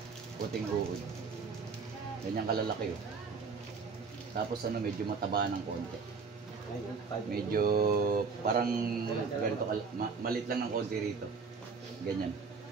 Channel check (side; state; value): left; quieter; 5.1 dB